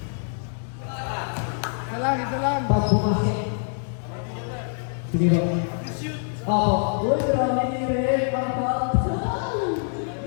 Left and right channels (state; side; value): silent; right; 62 dB below the other